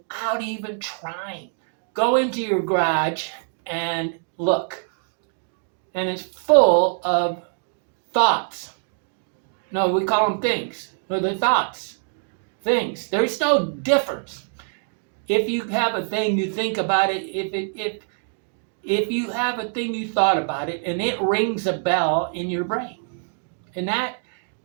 even trying. Go into your garage and look. And it's full of thoughts. No, we call them things. No, they're thoughts. Things. There's no difference. If you have a thing, you think about it. if you have a thing you thought about it and it rings a bell in your brain. And that,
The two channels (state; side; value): silent; left; digital silence